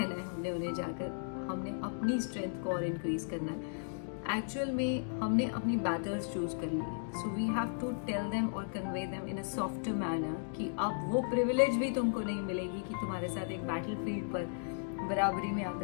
है हमने उन्हें जाकर। हमने अपनी स्ट्रेंथ को और इंक्रीज करना है। एक्चुअल में हमने अपनी बैटल्स चूज कर ली है, so we have to tell them और convey them in a softer manner कि अब वो प्रिविलेज भी तुमको नहीं मिलेगी कि तुम्हारे साथ एक बैटल फील्ड पर बराबरी में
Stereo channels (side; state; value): right; silent; digital silence